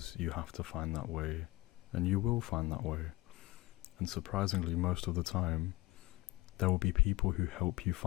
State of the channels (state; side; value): quieter; right; 19.6 dB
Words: you have to find that way, and you will find that way. And surprisingly, most of the time, there will be people who help you